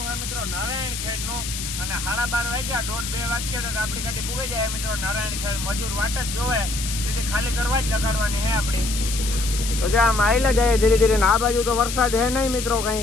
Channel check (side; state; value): left; noise; hiss, 6 dB below the sound